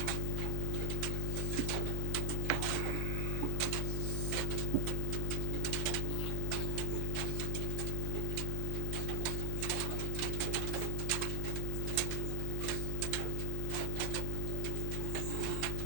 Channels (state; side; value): different; both; correlation 0.00